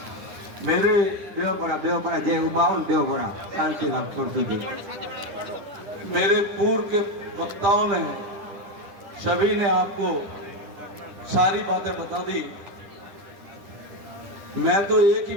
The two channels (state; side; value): late; left; 9.7 ms